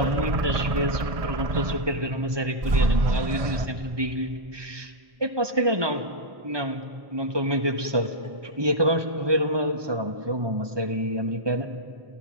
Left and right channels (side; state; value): left; late; 1.2 ms